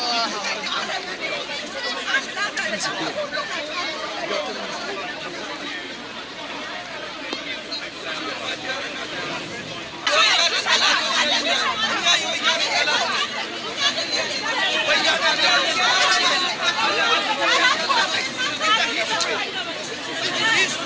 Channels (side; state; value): both; identical; correlation 1.00